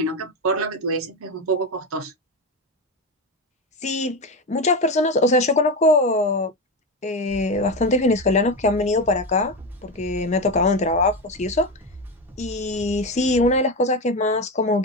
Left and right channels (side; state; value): both; normal; correlation 0.16